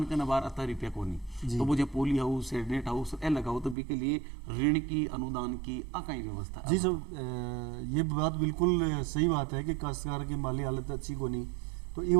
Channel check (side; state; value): left; drops out; at 3.8 s